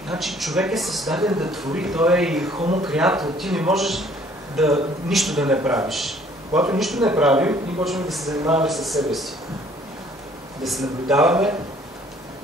Значи човек е създаден да твори, той е и homo creator. Ти не можеш нищо да не правиш. Когато нищо не правим, ние почваме да се занимаваме със себе си. Да се наблюдаваме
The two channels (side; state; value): both; normal; correlation 0.58